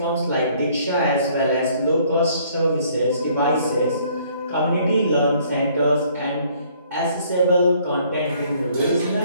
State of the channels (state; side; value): inverted; both; correlation -0.61